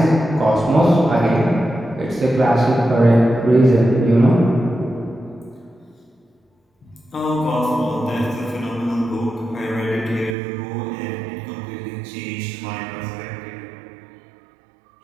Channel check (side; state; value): left; drops out; at 10.4 s